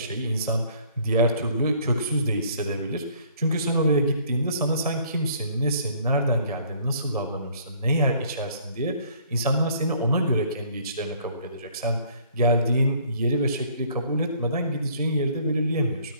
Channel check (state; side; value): inverted; both; correlation -0.59